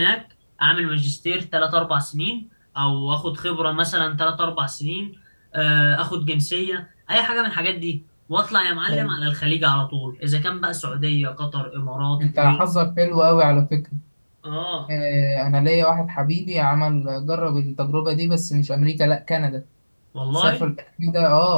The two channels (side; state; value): both; inverted; correlation -1.00